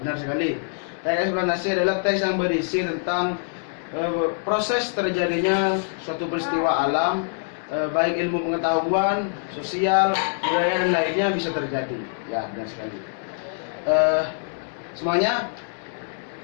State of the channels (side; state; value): right; silent; 62 dB below the other